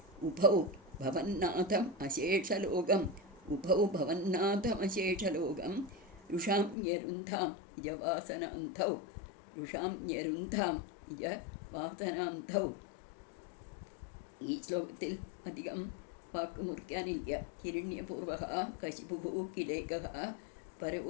ഉഭൗ ഭവന്നാഥം അശേഷലോകം രുഷാംയരുന്ധാം ഇജവാസനാന്ധൗ. ഈ ശ്ലോകത്തിൽ അധികം വാക്ക് മുറിക്കാനില്ല. ഹിരണ്യപൂർവഃ കശിപുഃ കിലൈകഃ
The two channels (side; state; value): right; drops out; at 6.8 s